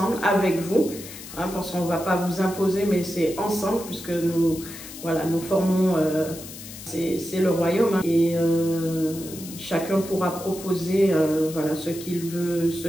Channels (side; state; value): left; noise; hiss, 13 dB below the sound